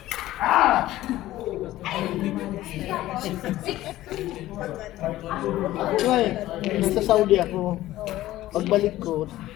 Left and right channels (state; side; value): quieter; right; 15.4 dB